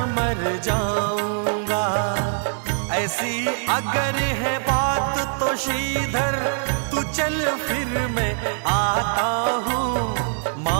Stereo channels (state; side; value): silent; left; digital silence